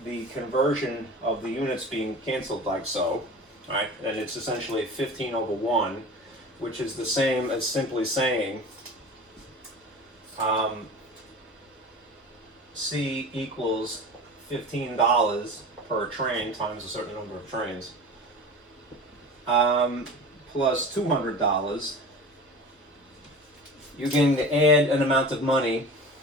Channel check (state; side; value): normal; both; correlation 0.36